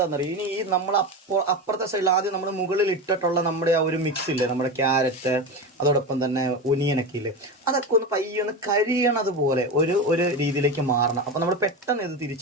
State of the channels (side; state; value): both; normal; correlation 0.21